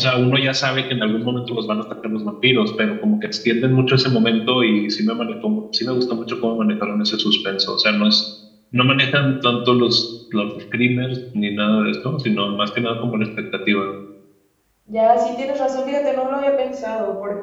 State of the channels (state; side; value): identical; both; correlation 1.00